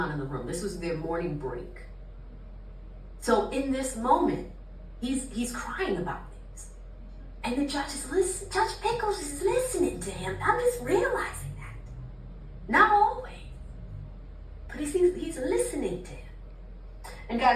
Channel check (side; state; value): both; identical; correlation 1.00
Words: in the room. This was their morning break. So in this moment, he's crying about things. And the judge is listening. Judge Pickles is listening to him. I'm just realizing that. Not always. But he's listening to him. And